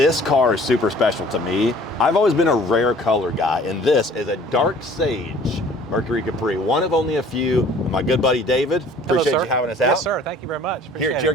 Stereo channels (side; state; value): both; normal; correlation 0.52